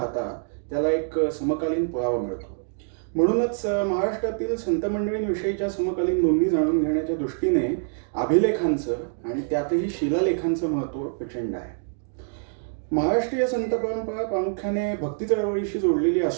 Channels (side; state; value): left; silent; digital silence